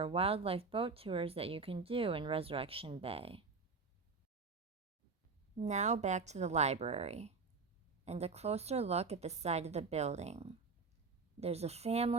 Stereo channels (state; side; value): quieter; left; 4.4 dB